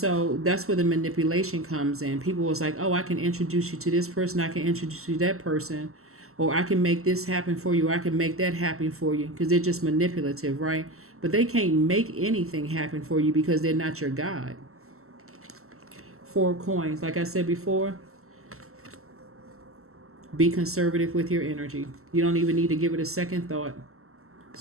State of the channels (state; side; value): late; left; 0.63 ms